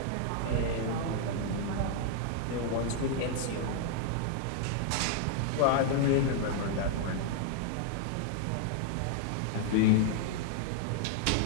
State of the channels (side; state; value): both; different; correlation 0.00